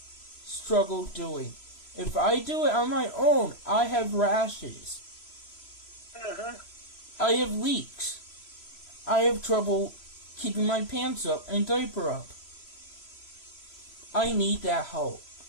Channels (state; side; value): late; right; 3.0 ms